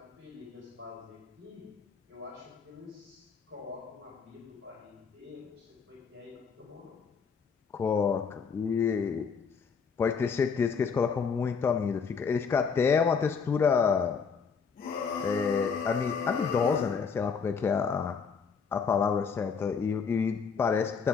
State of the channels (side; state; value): right; quieter; 5.9 dB